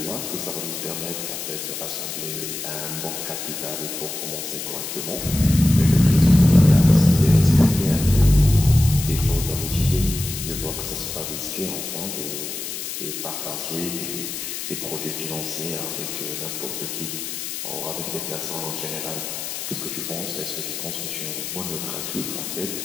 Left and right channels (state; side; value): noise; left; hiss, 6 dB below the sound